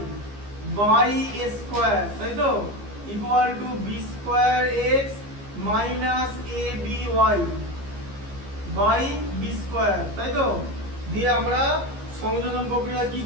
by a square, তাই তো, equal to b square x minus ab y by b square, তাই তো। দিয়ে আমরা সংযোজন প্রক্রিয়া কি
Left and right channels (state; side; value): late; left; 15 ms